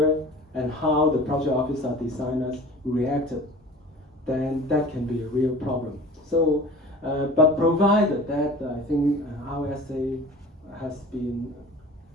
and how the project officer designers reacted, then that can be a real problem. So, but provided that I think RSA has been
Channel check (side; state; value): both; normal; correlation 0.41